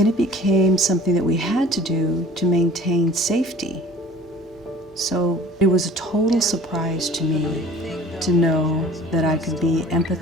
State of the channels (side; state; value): both; normal; correlation 0.47